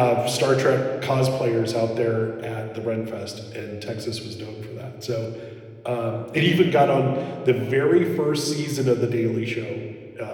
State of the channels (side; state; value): both; identical; correlation 1.00